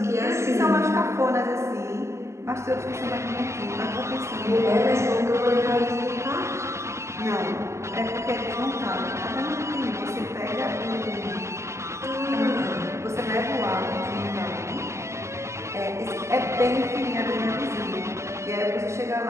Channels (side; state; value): left; late; 0.14 ms